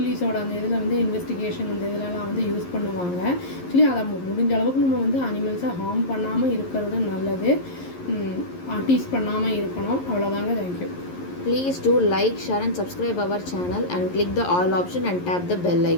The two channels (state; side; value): late; right; 11 ms